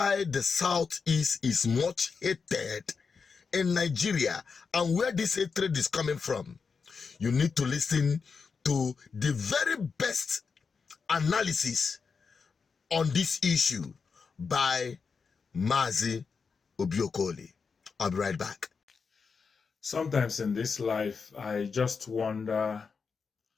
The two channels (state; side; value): quieter; right; 5.4 dB